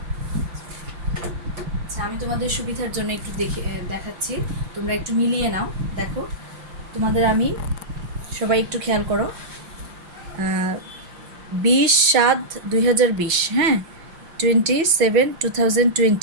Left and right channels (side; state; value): left; late; 5.7 ms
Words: আচ্ছা, আমি তোমাদের সুবিধার জন্য একটু দেখাচ্ছি, তোমরা একটু মিলিয়ে নাও। দেখো, তোমাদের আমি সবাই একটু খেয়াল করো। 20/7/2020, হ্যাঁ,